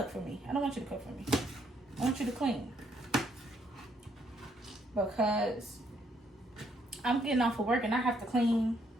for me. I don't want you to cook for me. I want you to clean. Because I'm getting off of work and I have to clean.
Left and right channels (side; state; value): both; normal; correlation 0.71